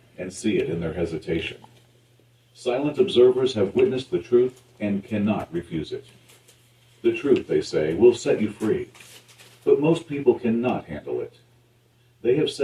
and see it in their hesitation. Silent observers have witnessed the truth and cannot refuse it. The truth, they say, will set you free, but most people cannot handle it. They have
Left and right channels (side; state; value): both; identical; correlation 1.00